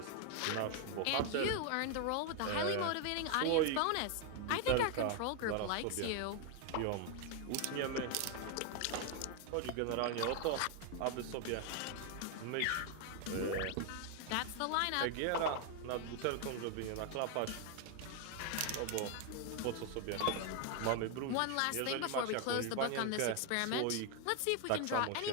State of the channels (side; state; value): both; different; correlation 0.01